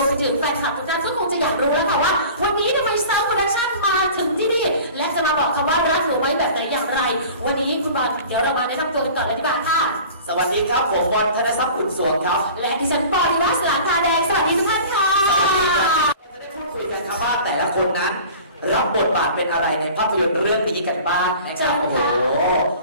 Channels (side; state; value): both; inverted; correlation -0.42